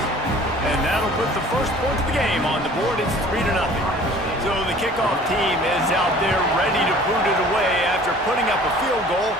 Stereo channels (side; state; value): both; normal; correlation 0.49